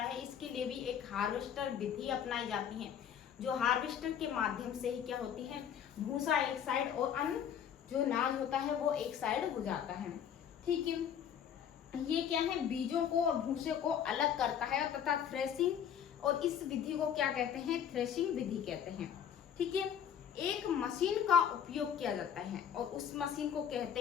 है, इसके लिए भी एक हार्वेस्टर विधि अपनाई जाती है। जो हार्वेस्टर के माध्यम से ही क्या होती है, भूसा एक साइड और अन्न जो अनाज होता है वो एक साइड हो जाता है। ठीक है, ये क्या है, बीजों को और भूसे को अलग करता है तथा थ्रेसिंग, और इस विधि को क्या कहते हैं, थ्रेसिंग विधि कहते हैं। ठीक है, एक मशीन का उपयोग किया जाता है और उस मशीन को कहते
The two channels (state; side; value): quieter; right; 8.7 dB